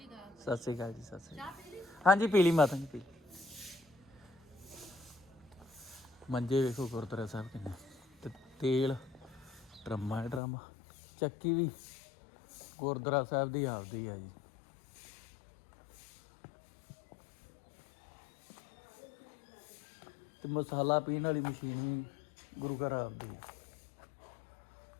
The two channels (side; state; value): right; drops out; at 10.4 s